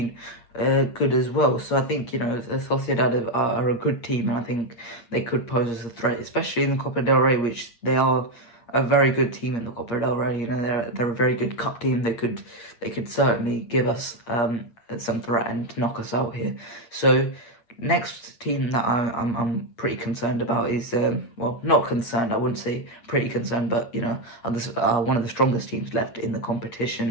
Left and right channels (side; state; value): right; late; 8.6 ms